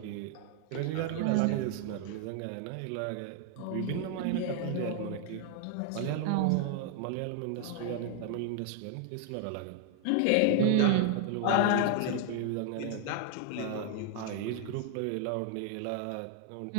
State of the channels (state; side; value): different; both; correlation 0.00